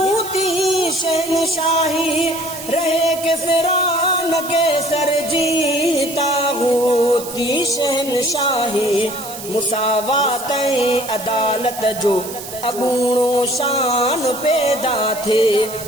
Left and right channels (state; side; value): noise; right; hiss, 11 dB below the sound